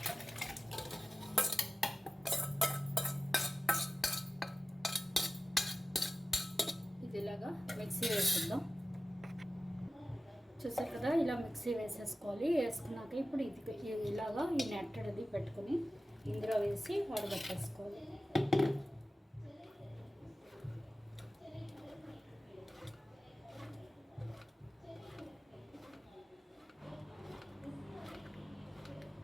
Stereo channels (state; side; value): normal; both; correlation 0.95